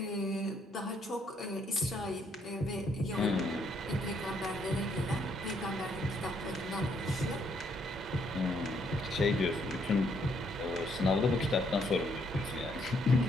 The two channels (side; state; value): both; normal; correlation 0.71